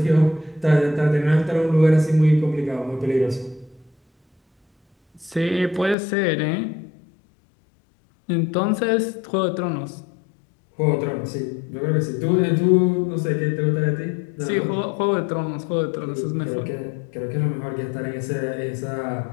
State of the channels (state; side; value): drops out; right; at 6.0 s